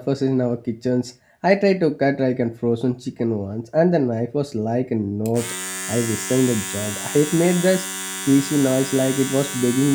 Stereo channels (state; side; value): identical; both; correlation 1.00